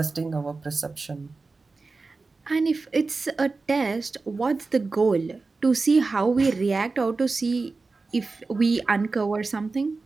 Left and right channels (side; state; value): left; quieter; 3.9 dB